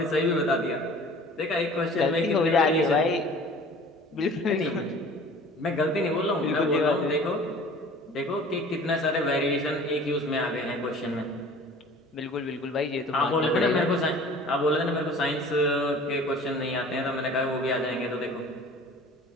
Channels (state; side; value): normal; both; correlation 0.46